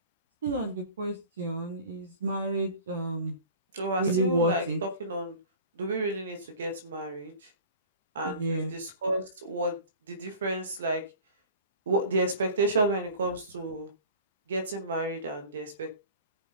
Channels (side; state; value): both; inverted; correlation -0.42